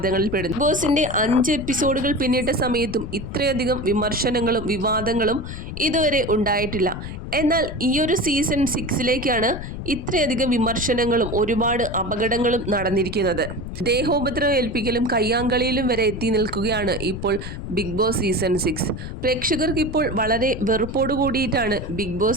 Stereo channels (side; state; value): left; noise; rumble, 8 dB below the sound